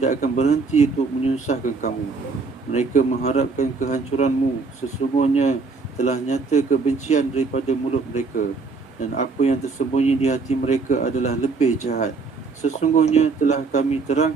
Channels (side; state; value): left; quieter; 4.3 dB